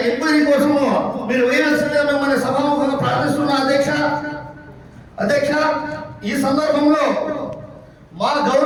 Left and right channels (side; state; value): both; identical; correlation 1.00